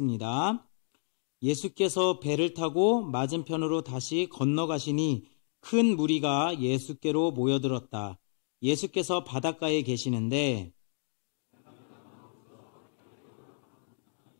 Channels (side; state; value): right; silent; 57 dB below the other